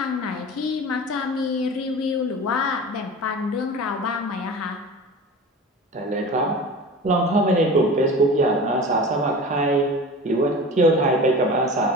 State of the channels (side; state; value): both; normal; correlation 0.35